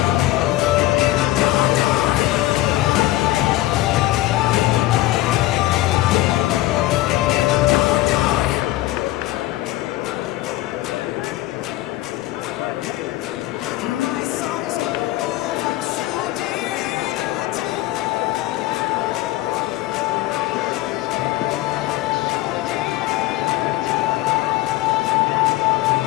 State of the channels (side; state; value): right; quieter; 16.6 dB